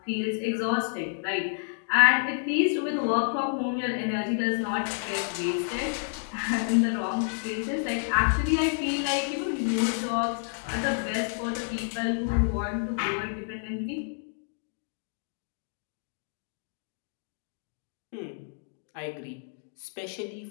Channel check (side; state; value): right; silent; digital silence